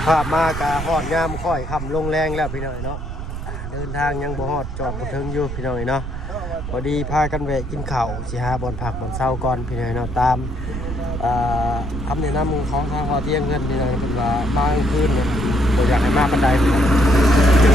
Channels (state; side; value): noise; right; rumble, 7 dB below the sound